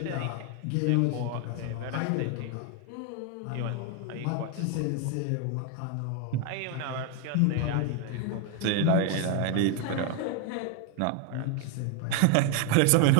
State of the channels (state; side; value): different; both; correlation 0.01